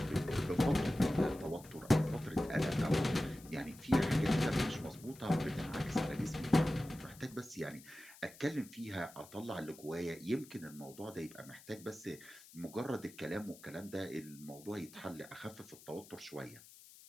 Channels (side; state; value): left; noise; hiss, 20 dB below the sound